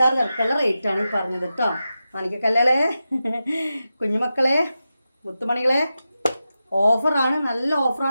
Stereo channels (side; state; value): both; inverted; correlation -0.91